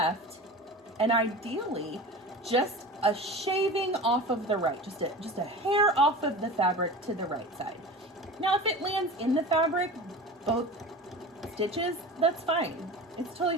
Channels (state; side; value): normal; both; correlation 0.33